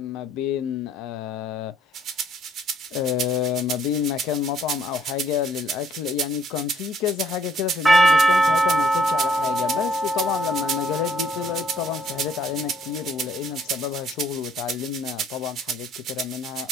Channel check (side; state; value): both; normal; correlation 0.65